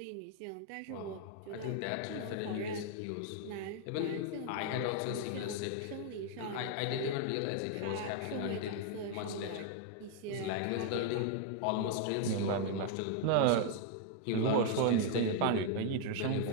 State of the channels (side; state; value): both; different; correlation 0.00